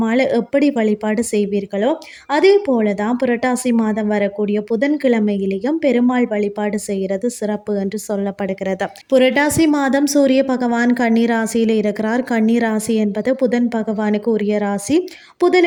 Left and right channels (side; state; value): both; identical; correlation 1.00